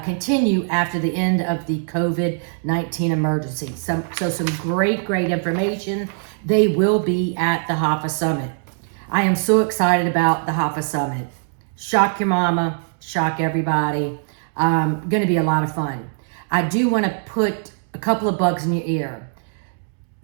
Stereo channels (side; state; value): left; silent; digital silence